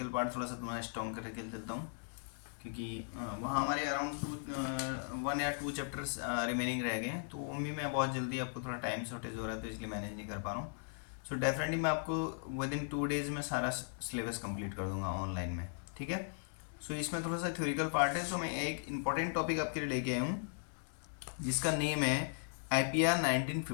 पार्ट थोड़ा सा तुम्हारा स्ट्रॉन्ग करके चलता हूँ, क्योंकि वहाँ हमारे अराउंड 1 या 2 चैप्टर्स रिमेनिंग रह गए हैं। तो उनमें मैं बहुत जल्दी, आपको थोड़ा टाइम शॉर्टेज हो रहा है तो इसलिए मैनेज नहीं कर पा रहा हूँ। सो डेफिनेटली मैं आपको विद इन 2 days में सारा सिलेबस कंप्लीट कर दूंगा ऑनलाइन में, ठीक है। सो इसमें थोड़ा सा थ्योरिकल पार्ट है। सो मैं एक इंपॉर्टेंट टॉपिक आपके लिए लेके आया हूँ जिसका नेम है IPR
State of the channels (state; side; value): silent; right; digital silence